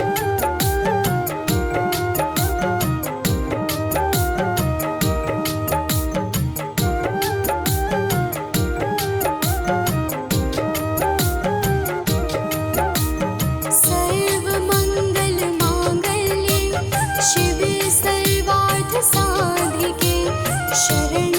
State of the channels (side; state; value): both; identical; correlation 1.00